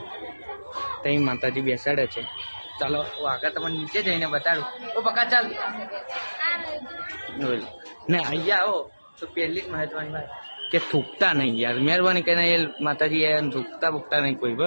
ત્યાં માતાજી બેસાડે છે. ચાલો આગળ તમને નીચે જઈને બતાડું. તો પક્કા ચાલ ને અહીંયા આવો તો પહેલી જ મહત્વની વાત કે થૂકતા નહીં યાર. મહેરબાની કરીને એ માતાજી એ થૂકતા નહીં કોઈ.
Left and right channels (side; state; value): both; inverted; correlation -1.00